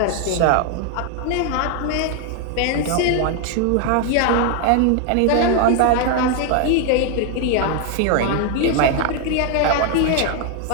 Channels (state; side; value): different; both; correlation 0.00